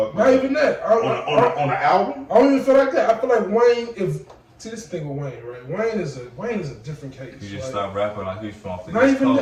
Not even that. On the album, I don't even feel like that. I feel like Wayne. See, this thing with Wayne, right? Wayne is a different case. He just stopped rapping like he's from the Not East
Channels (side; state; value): both; identical; correlation 1.00